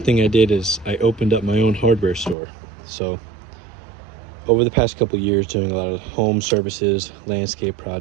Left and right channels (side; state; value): left; drops out; at 2.4 s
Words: I did is I opened up my own hardware store. So over the past couple of years, doing a lot of home services, landscape